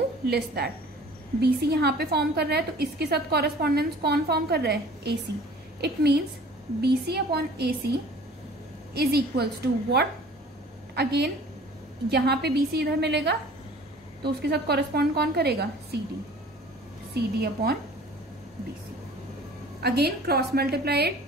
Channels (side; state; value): both; normal; correlation 0.47